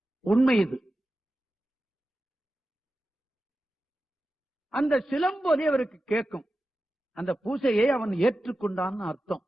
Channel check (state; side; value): normal; both; correlation 0.93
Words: உண்மை இது. அந்த சிலம்பொலி அவருக்கு கேட்கும். அந்த பூசையை அவன் ஏற்றுக்கொண்டான்னு அர்த்தம்,